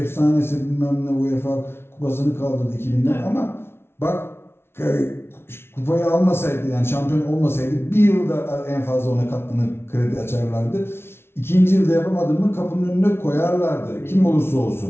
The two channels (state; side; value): late; right; 0.12 ms